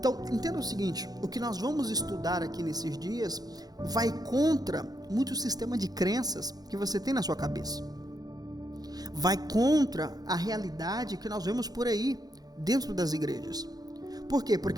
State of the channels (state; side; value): late; left; 0.19 ms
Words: entenda o seguinte, o que nós vamos estudar aqui nesses dias vai contra muito sistema de crenças que você tem na sua cabeça. Vai contra a realidade que nós vemos por aí, dentro das igrejas. Por quê?